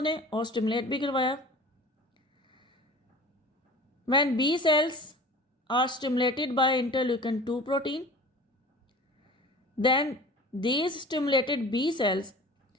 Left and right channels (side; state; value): both; normal; correlation 0.40